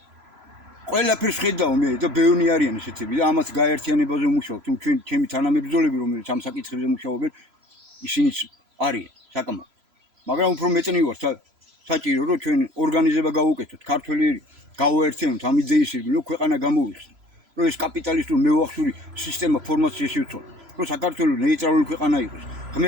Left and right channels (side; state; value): left; late; 3.0 ms